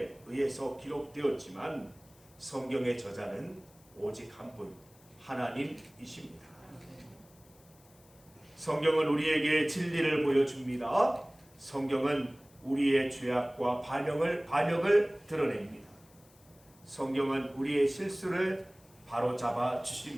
의해서 기록되었지만 성경의 저자는 오직 한 분, 하나님이십니다. 성경은 우리에게 진리를 보여줍니다. 성경은 우리의 죄악과 반역을 드러냅니다. 성경은 우리의 실수를 바로잡아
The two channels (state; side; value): noise; left; hiss, 28 dB below the sound